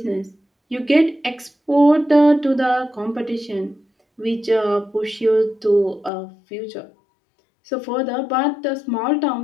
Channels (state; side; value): drops out; right; at 6.1 s